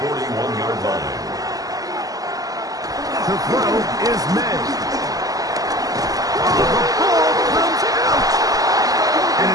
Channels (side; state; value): left; late; 0.17 ms